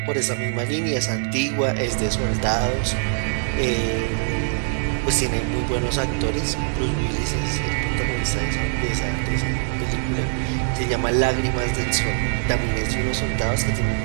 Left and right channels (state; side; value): silent; left; 62 dB below the other